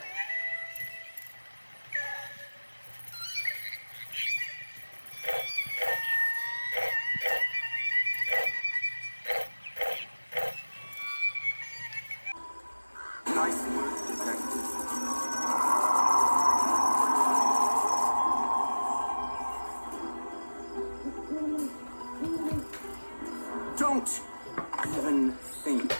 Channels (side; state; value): both; inverted; correlation -1.00